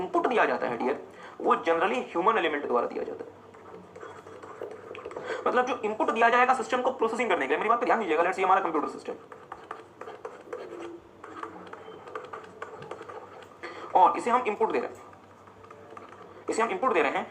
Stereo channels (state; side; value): identical; both; correlation 1.00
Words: दिया जाता है डियर, वो जनरली ह्यूमन एलिमेंट द्वारा दिया जाता है। मतलब जो इनपुट दिया जाएगा सिस्टम को प्रोसेसिंग करने के लिए, मेरी बात पर ध्यान दीजिएगा। लेट्स से हमारा कंप्यूटर सिस्टम और इसे हम इनपुट दे रहे हैं,